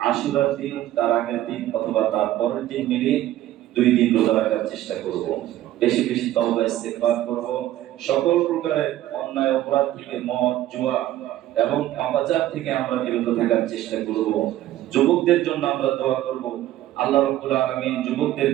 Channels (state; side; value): quieter; left; 13.8 dB